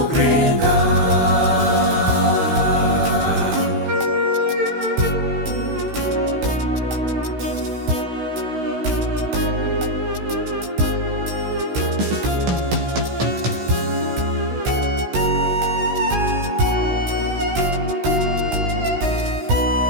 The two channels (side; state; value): left; late; 16 ms